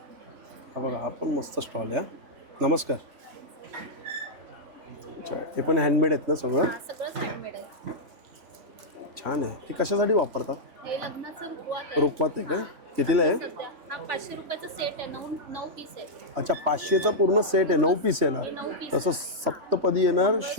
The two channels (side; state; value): left; late; 3.5 ms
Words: हा बघा, हा पण मस्त स्टॉल आहे. नमस्कार. अच्छा, हे पण हँडमेड आहेत ना सगळं? हा सगळंच हँडमेड आहे. छान आहे. हे कशासाठी वापरतात? हे लग्नाचं रुखवत आहे. रुखवत आहे का? कितीला आहे? सध्या हा 500 रुपयाचा सेट आहे. 9 पीस आहे. अच्छा, 500चा पूर्ण सेट आहे, 9 पीस येणार. हे 9 पीस. तसं सप्तपदी येणार,